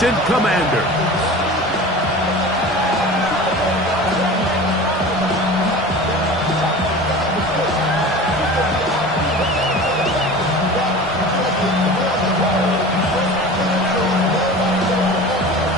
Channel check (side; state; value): both; normal; correlation 0.36